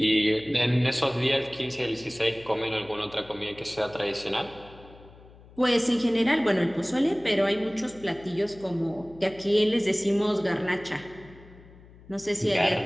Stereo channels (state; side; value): noise; left; hum, 22 dB below the sound